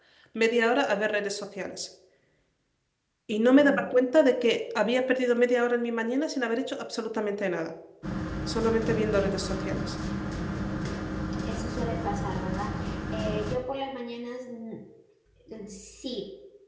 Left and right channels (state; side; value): identical; both; correlation 1.00